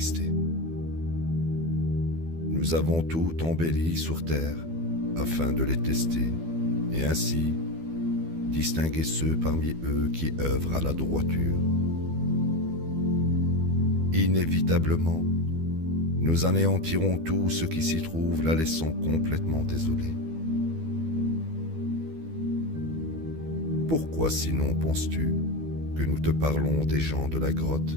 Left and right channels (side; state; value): left; late; 12 ms